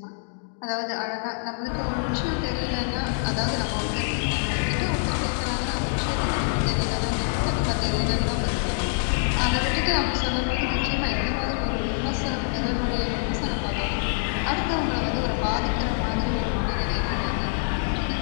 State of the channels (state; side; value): silent; right; digital silence